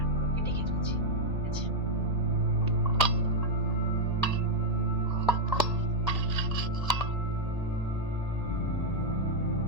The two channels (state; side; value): noise; left; hum, 17 dB below the sound